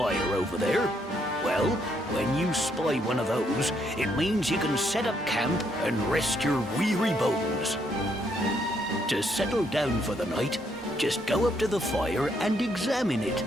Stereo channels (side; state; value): both; normal; correlation 0.73